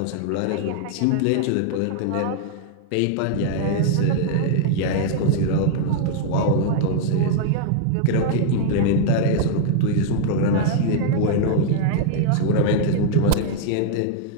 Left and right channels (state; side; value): different; both; correlation 0.00